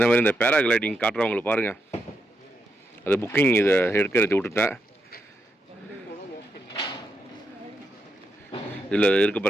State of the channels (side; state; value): both; normal; correlation 0.83